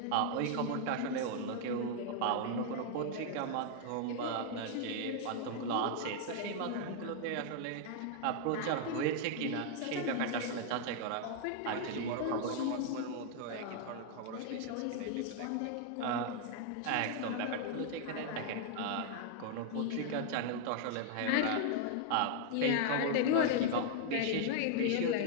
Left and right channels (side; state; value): both; different; correlation 0.00